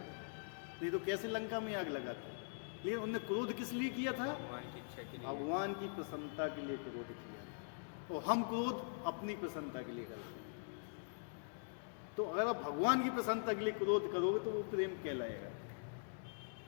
नहीं तो कैसे लंका में आग लगा था? लेकिन उन्होंने क्रोध किस लिए किया था? भगवान की इच्छा के लिए। भगवान की प्रसन्नता के लिए क्रोध किया। तो हम क्रोध अपनी प्रसन्नता के लिए करते हैं। तो अगर आप भगवान की प्रसन्नता के लिए क्रोध करोगे तो वो प्रेम कहलाएगा,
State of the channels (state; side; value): silent; right; digital silence